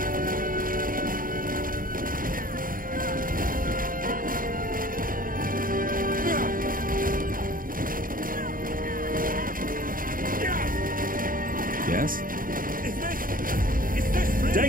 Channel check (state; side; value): late; left; 0.41 ms